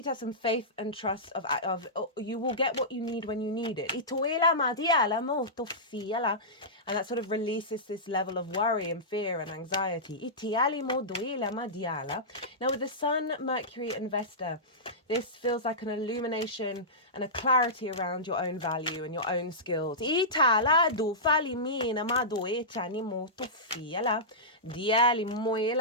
have some faith and trust of you will get what you need when you need it. And that sort of releases this level of worry and fear and anxiety. Now with the sun, Mercury and Vesta, this feels like an illumination and a clarity around your own value and your own skills. And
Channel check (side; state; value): both; normal; correlation -0.16